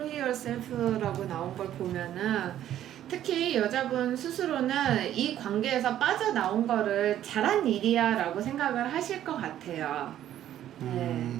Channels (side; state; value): left; quieter; 11.7 dB